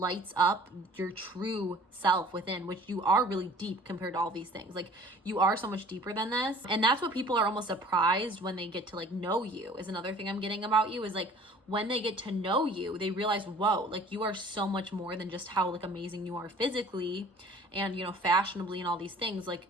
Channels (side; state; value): both; normal; correlation 0.50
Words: up your true self within, which you are really deep compared to all these things. Like you are so much deeper than this. And that's what people are almost surprised when they get to like know you, is another thing I'm getting about you, is like when they get to know you, they realize, whoa, like you are so much more than just how like amazing you are physically and, you know, fashionably and all these things. Like